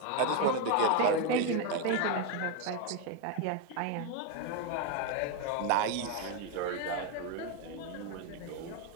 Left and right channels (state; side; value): different; both; correlation 0.02